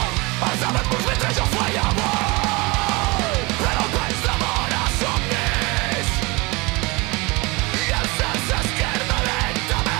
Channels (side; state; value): left; quieter; 25.5 dB